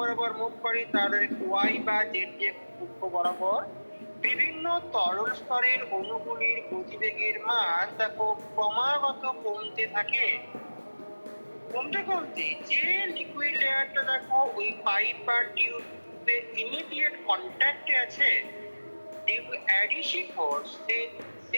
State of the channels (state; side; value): inverted; both; correlation -1.00